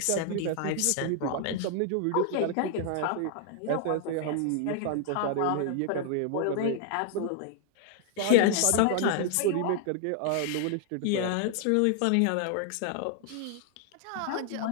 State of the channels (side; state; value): both; different; correlation 0.00